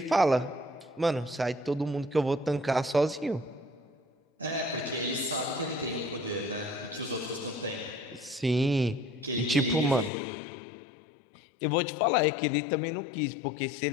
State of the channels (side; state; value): right; drops out; at 10.1 s